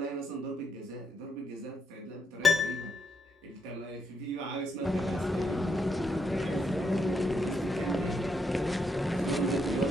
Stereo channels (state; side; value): normal; both; correlation 0.78